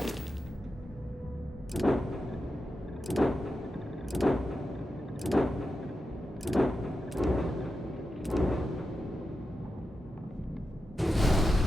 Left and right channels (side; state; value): both; normal; correlation 0.89